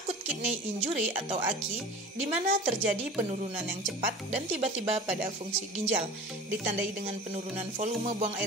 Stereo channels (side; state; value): both; normal; correlation 0.38